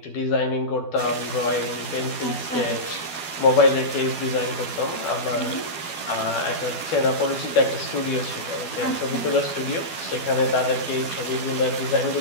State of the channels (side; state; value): right; late; 12 ms